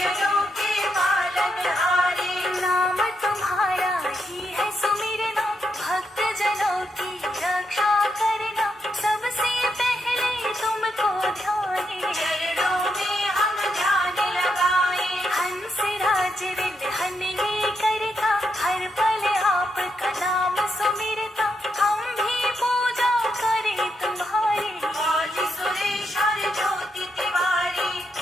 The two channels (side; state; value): both; normal; correlation 0.81